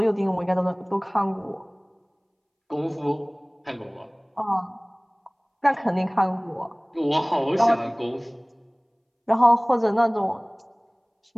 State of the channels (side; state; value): both; identical; correlation 1.00